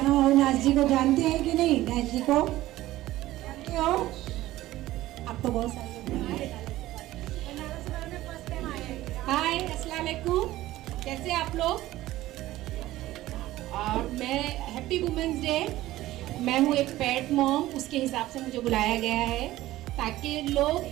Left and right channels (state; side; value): quieter; left; 15.9 dB